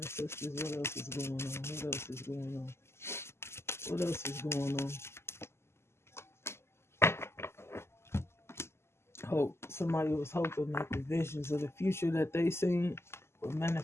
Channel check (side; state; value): right; late; 0.12 ms